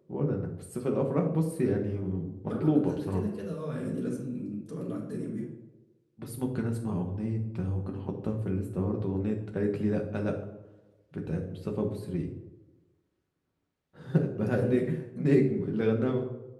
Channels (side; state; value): both; identical; correlation 1.00